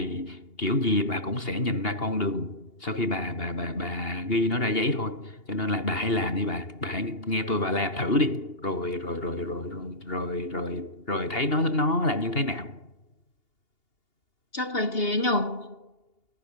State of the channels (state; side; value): late; right; 2.8 ms